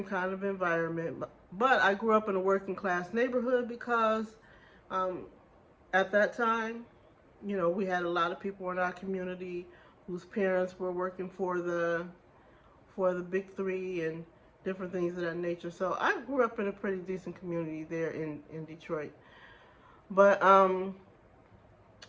kind of environment. But I grew up in a working class neighborhood because um, at that time, we had a lot of people in our community whose parents were working for the big three and different things of that nature. So I grew up in a pretty decent community there in Detroit. But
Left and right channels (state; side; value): identical; both; correlation 1.00